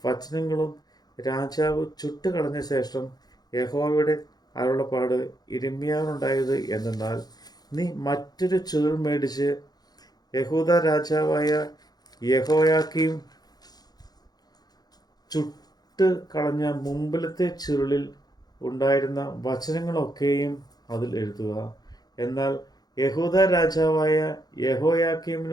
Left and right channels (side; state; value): right; late; 0.19 ms